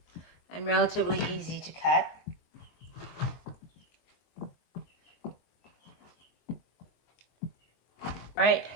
And relatively easy to cut. Right,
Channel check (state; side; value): late; right; 22 ms